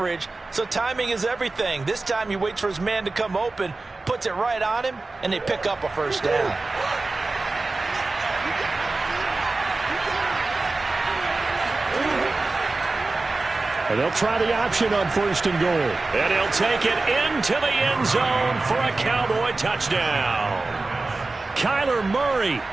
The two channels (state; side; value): quieter; left; 3.4 dB